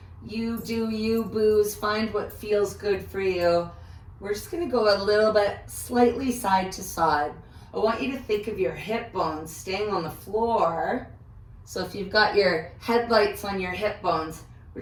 you do you, boos. Find what feels good for you. We're just gonna go a little bit slightly side to side. I want you to think of your hip bones staying on the floor. So if you've got your headlights on your hip bones, we're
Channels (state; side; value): identical; both; correlation 1.00